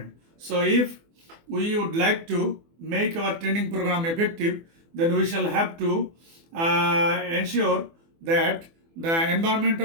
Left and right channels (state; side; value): late; left; 24 ms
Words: So if we would like to make our training program effective, then we shall have to ensure that the environment